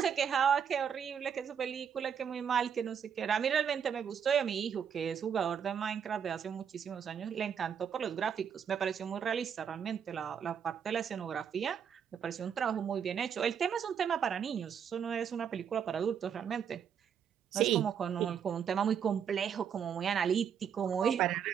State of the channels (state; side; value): quieter; left; 7.8 dB